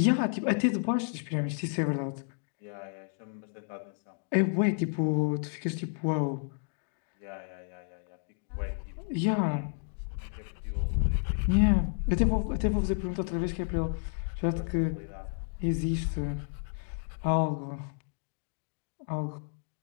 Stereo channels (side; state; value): right; silent; 57 dB below the other